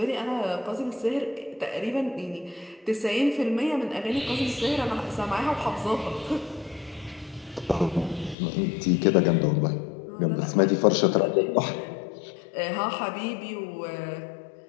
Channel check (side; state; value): right; drops out; at 8.3 s